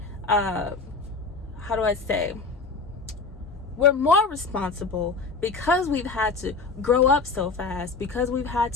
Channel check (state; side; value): quieter; right; 4.2 dB